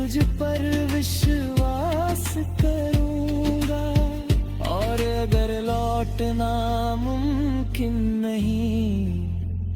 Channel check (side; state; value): both; identical; correlation 1.00